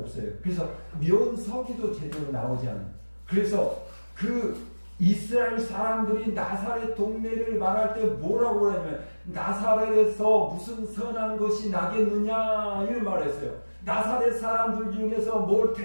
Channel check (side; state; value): both; inverted; correlation -1.00